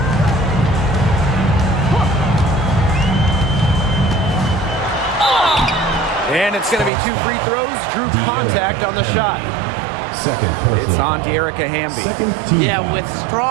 And it's going to be 2 free throws. Drew contact on the shot. Second personal It's on foul. De'Erica Hamby. Second team Yeah, foul. with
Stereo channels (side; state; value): left; drops out; at 6.9 s